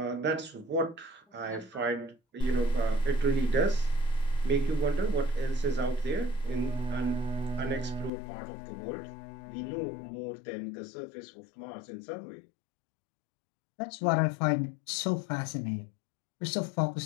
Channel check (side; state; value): right; drops out; at 8.1 s